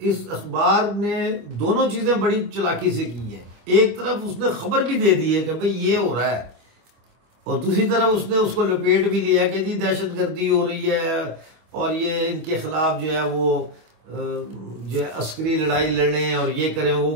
इस अखबार ने दोनों चीज़ें बड़ी चालाकी से की हैं। एक तरफ उसने खबर भी दे दी है कि भाई ये हो रहा है, और दूसरी तरफ उसने उसको लपेट भी लिया कि जी दहशतगर्दी हो रही है और ये इनके खिलाफ जो है वो जो है अस्करी लड़ाई लड़ें और ये करें वो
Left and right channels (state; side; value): late; left; 25 ms